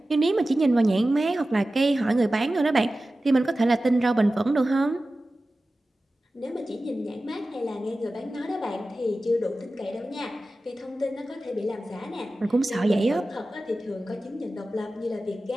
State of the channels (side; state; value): both; normal; correlation 0.95